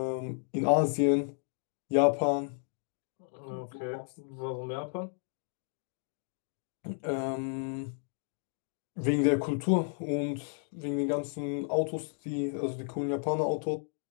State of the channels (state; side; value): silent; right; 56 dB below the other